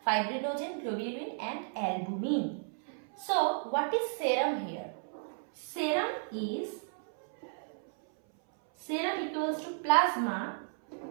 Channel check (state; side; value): silent; left; 55 dB below the other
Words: fibrinogen, globulin and albumin. So what is serum here? Serum equals to plasma